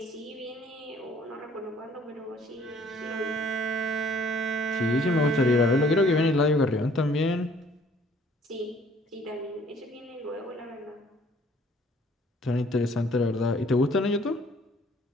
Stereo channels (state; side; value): normal; both; correlation 0.58